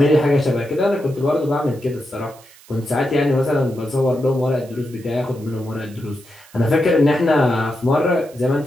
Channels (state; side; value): noise; right; hiss, 24 dB below the sound